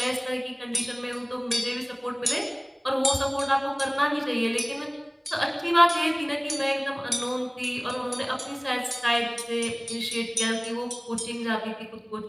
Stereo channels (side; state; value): both; identical; correlation 1.00